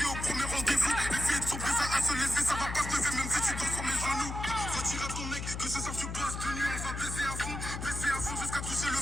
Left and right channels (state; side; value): noise; left; hum, 6 dB below the sound